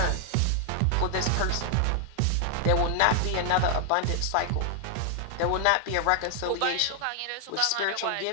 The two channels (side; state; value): both; different; correlation 0.00